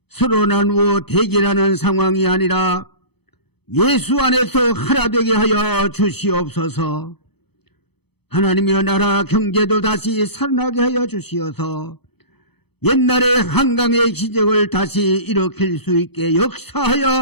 서로 나누어 대결하는 상황이 아니라 예수 안에서 하나 되게 하여 주시옵소서. 하나님의 나라 경제도 다시 살아나게 하여 주시어서 옛날의 한강의 기적을 다시 일으킬 수 있게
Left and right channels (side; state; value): right; late; 0.98 ms